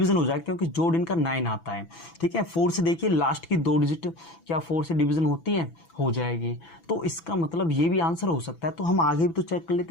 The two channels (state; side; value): late; right; 6.0 ms